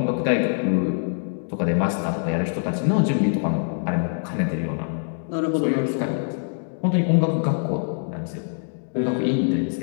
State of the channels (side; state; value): right; silent; digital silence